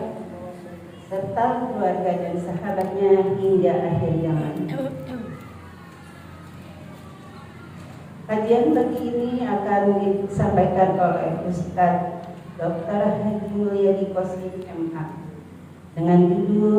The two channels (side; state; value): both; identical; correlation 1.00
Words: serta keluarga dan sahabatnya hingga akhir zaman. Kajian pagi ini akan disampaikan oleh Ustaz Dr. Haji Mulyadi Qoslim MH dengan